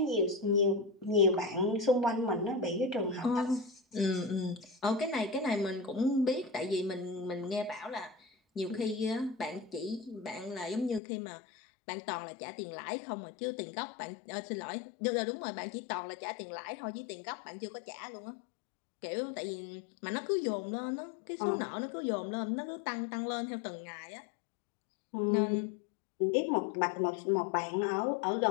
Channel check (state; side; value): drops out; right; at 11.0 s